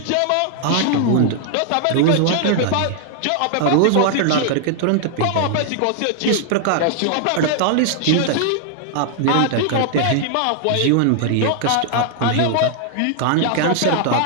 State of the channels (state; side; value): different; both; correlation 0.00